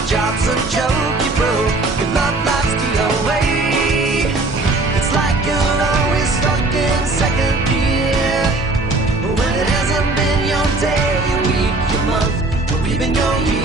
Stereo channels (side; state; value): left; quieter; 3.1 dB